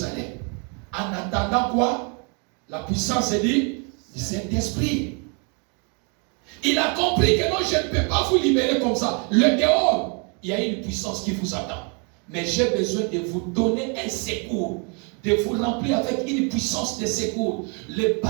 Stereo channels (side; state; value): left; quieter; 36.0 dB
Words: En attendant quoi? La puissance du Saint-Esprit. Il a compris que non, je ne peux pas vous libérer comme ça. Le dehors, il y a une puissance qui vous attend. Mais j'ai besoin de vous donner un secours, de vous remplir avec une puissance de secours. Le